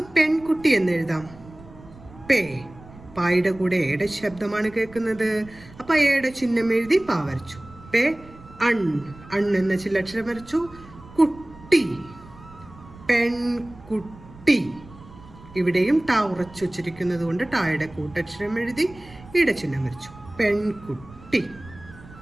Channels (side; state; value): right; noise; rumble, 20 dB below the sound